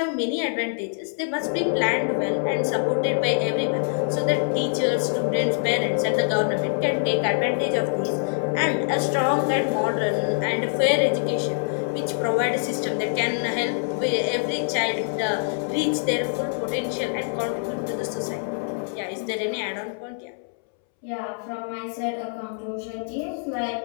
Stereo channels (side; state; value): right; silent; 62 dB below the other